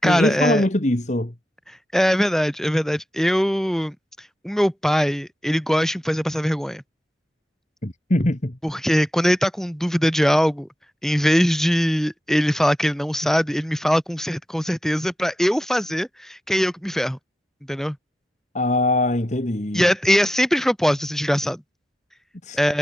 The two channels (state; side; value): normal; both; correlation 0.89